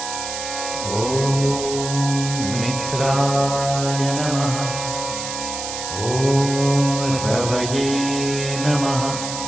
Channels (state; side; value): noise; right; hiss, 6 dB below the sound